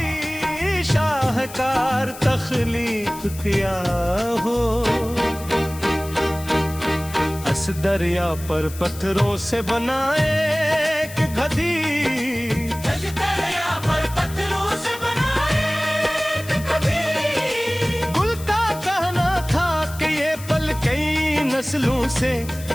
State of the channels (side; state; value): left; noise; hiss, 15 dB below the sound